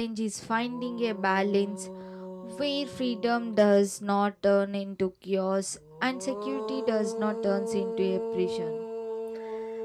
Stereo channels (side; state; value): both; identical; correlation 1.00